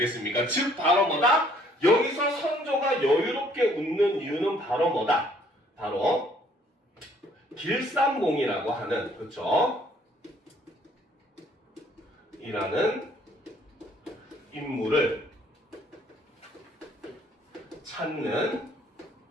즉 바로 뭐다? 여기서 선조가 여유롭게 웃는 이유는 바로 뭐다? 바로 길산봉이라고 하는, 그렇죠? 이라는 인물을 찾는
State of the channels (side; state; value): both; normal; correlation 0.62